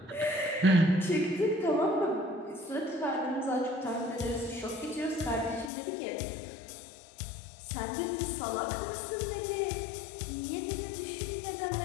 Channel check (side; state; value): right; drops out; at 5.7 s